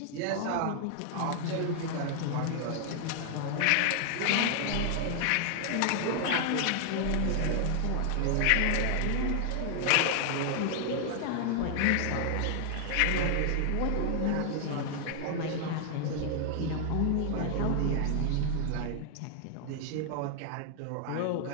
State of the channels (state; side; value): different; both; correlation 0.00